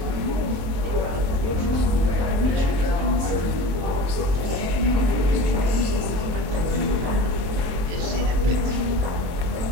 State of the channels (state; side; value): late; left; 23 ms